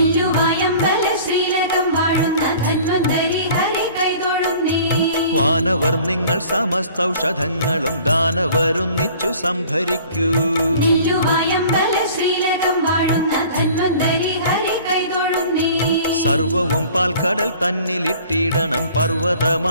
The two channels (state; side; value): inverted; both; correlation -0.48